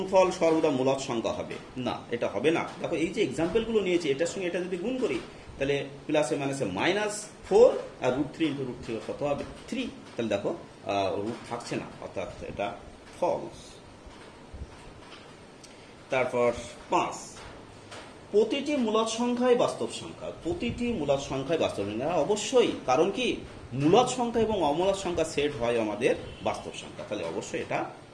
সর্বদা মূলদ সংখ্যা হবে না, এটা হবে না। দেখো এই যে এক্সাম্পল গুলো নিয়েছি, এটার সঙ্গে এটা যদি গুণ করি তাহলে প্লাসে মাইনাসে -4 আর √3 × √3 কত হবে 3। তাহলে দেখো রুট থাকছে না, অর্থাৎ এটা ফলস। তারপর 5, প্রতিটি মূলদ সংখ্যাই বাস্তব সংখ্যা। প্রতিটি মূলদ সংখ্যাই বাস্তব সংখ্যা অবশ্যই, কারণ কি মূলদ সংখ্যা এবং অমূলদ সংখ্যা সেট হয় আমাদের বাস্তব সংখ্যা, তাহলে অবশ্যই এটা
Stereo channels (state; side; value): identical; both; correlation 1.00